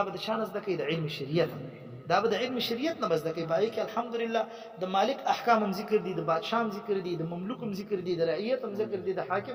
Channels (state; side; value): identical; both; correlation 1.00